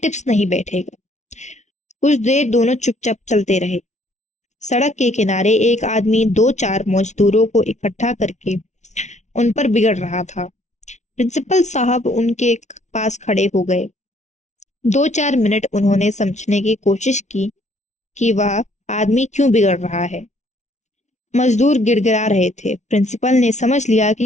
नहीं बैठेगा। कुछ देर दोनों चुपचाप चलते रहे। सड़क के किनारे एक आदमी 2-4 मजदूरों को इकट्ठा करके उन पर बिगड़ रहा था। प्रिंसिपल साहब उनके पास खड़े हो गए। 2-4 मिनट उन्होंने समझने की कोशिश की कि वह आदमी क्यों बिगड़ रहा है। मजदूर गिड़गिड़ा रहे थे। प्रिंसिपल ने समझ लिया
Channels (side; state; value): right; late; 0.33 ms